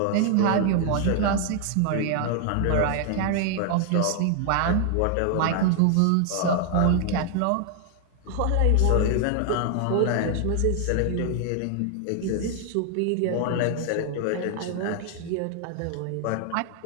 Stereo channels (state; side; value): different; both; correlation 0.00